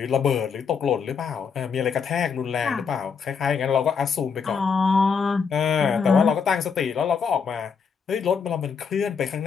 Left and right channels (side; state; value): right; quieter; 6.0 dB